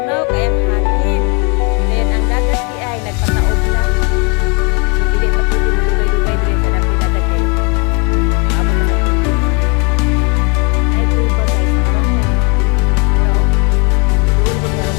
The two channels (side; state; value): right; quieter; 31.2 dB